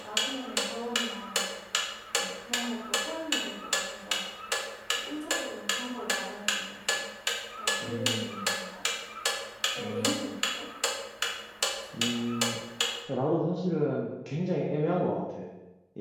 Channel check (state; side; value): identical; both; correlation 1.00